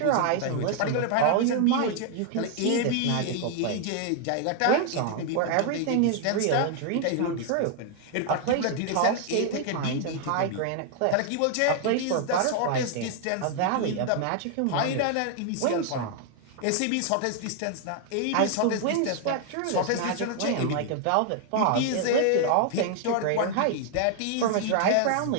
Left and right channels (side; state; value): both; different; correlation 0.00